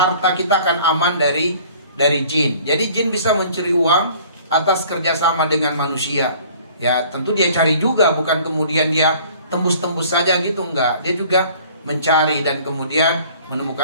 kita akan aman dari jin. Jadi jin bisa mencuri uang atas kerjasama dengan manusia. Ya, tentu dia cari juga, bukan kemudian dia tembus-tembus saja gitu, enggak. Dia juga mencari dan kemudian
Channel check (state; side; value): inverted; both; correlation -0.51